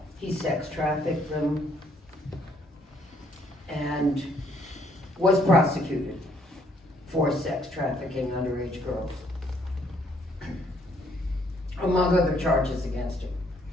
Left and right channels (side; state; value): both; normal; correlation 0.67